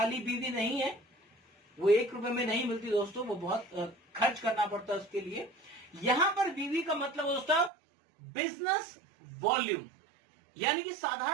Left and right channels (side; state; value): left; drops out; at 7.7 s